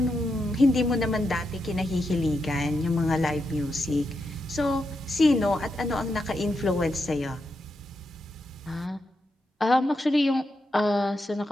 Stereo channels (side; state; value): both; normal; correlation 0.85